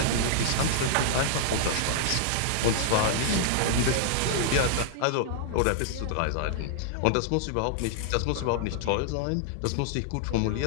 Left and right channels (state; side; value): different; both; correlation -0.01